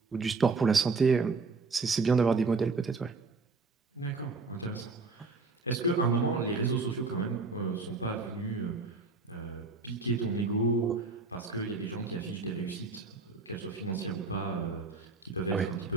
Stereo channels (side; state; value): left; quieter; 4.0 dB